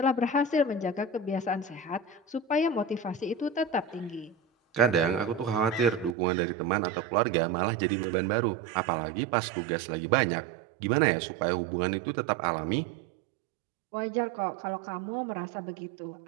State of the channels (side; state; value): left; drops out; at 6.2 s